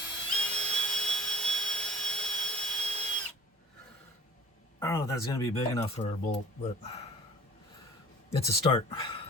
I don't know if that's going to be big enough for a bolt, but it's a start.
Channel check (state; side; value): normal; both; correlation 0.47